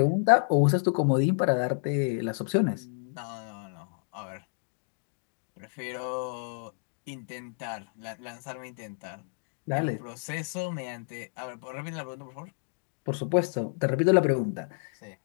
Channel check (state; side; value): silent; right; digital silence